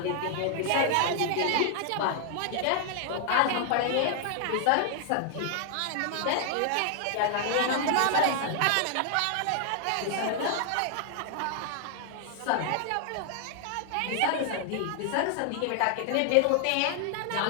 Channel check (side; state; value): both; different; correlation 0.00